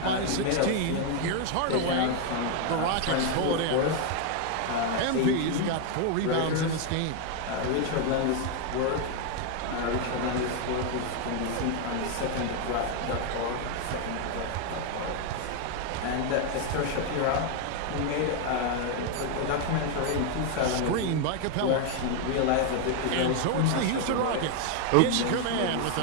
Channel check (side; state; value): both; different; correlation 0.01